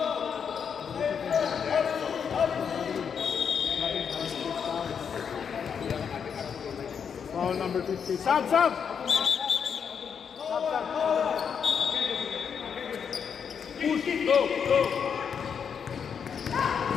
Foul number 50. Sub, sub. Push it, go, go.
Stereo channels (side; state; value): right; quieter; 7.0 dB